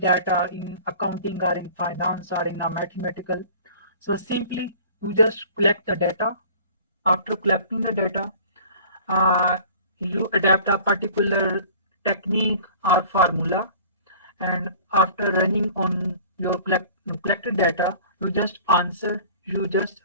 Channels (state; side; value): inverted; both; correlation -0.45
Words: in accounting or in finance or in a mathematical, so simply you just collect the data. After collecting the data, uh, you adapt a particular technique or formula, and after running on your collected data, you just answer, you just